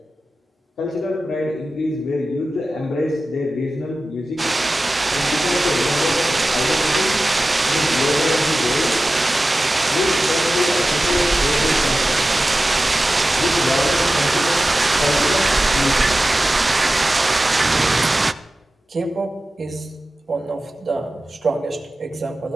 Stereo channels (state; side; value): normal; both; correlation 0.95